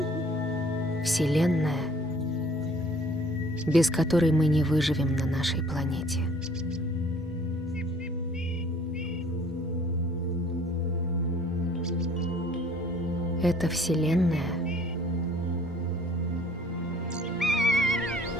Вселенная, без которой мы не выживем на нашей планете. Эта Вселенная —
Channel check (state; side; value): normal; both; correlation 0.55